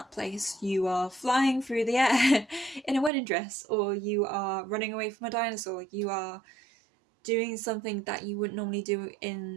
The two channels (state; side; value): drops out; left; at 3.1 s